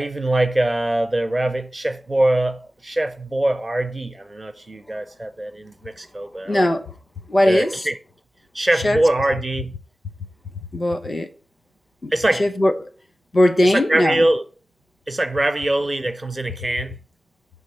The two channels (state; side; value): normal; both; correlation 0.96